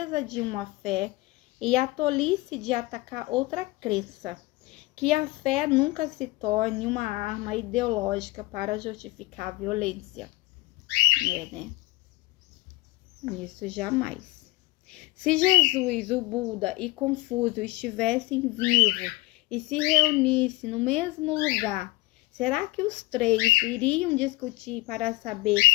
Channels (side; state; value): right; quieter; 20.4 dB